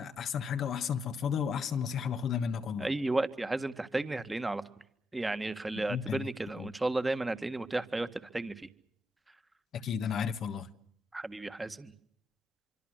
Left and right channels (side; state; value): both; normal; correlation 0.81